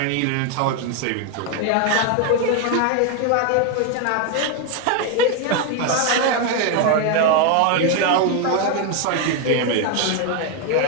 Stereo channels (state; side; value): different; both; correlation 0.01